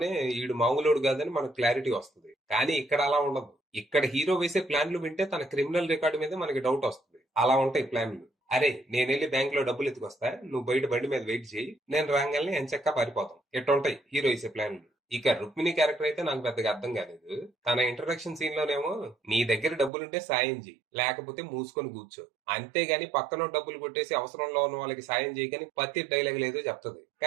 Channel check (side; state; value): left; drops out; at 19.9 s